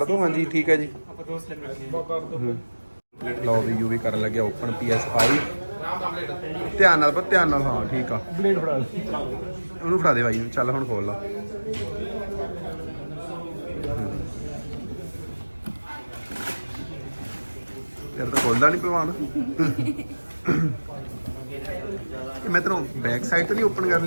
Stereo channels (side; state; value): both; inverted; correlation -1.00